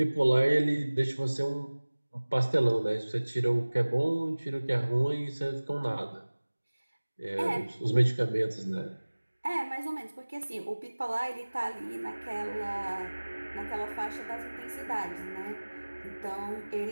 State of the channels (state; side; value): inverted; both; correlation -1.00